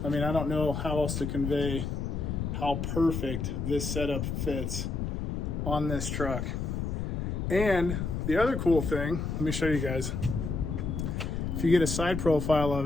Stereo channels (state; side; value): noise; left; rumble, 2 dB below the sound